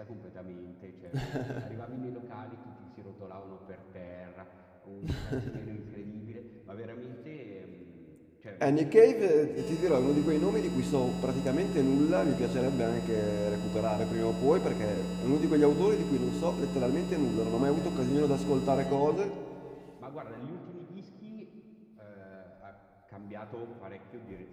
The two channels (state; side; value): identical; both; correlation 1.00